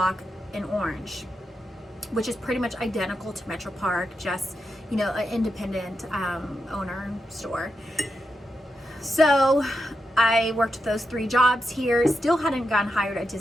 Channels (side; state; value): both; normal; correlation 0.86